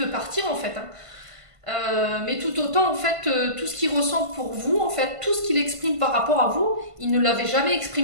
partir en fait. Hein. Mais tout autant, en fait, tout ce qu'il ressent pour vous, en fait, tout ce qu'il exprime par rapport à vous, il ne l'avait jamais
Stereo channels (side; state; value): left; late; 1.5 ms